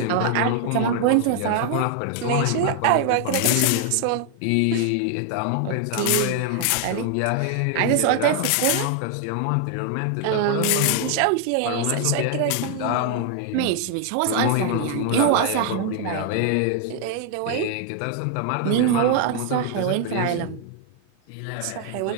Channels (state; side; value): different; both; correlation 0.00